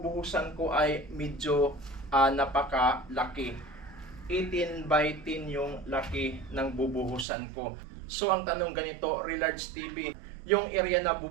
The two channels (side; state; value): left; drops out; at 7.2 s